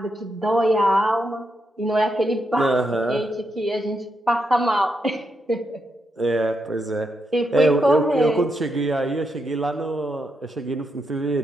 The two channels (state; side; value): normal; both; correlation 0.82